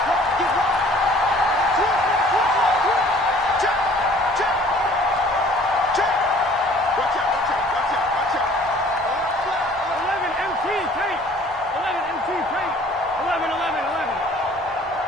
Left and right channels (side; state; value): both; normal; correlation 0.53